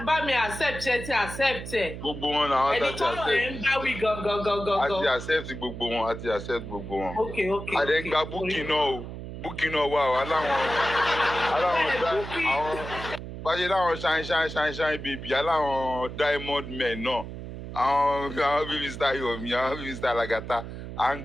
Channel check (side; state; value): right; noise; hum, 9 dB below the sound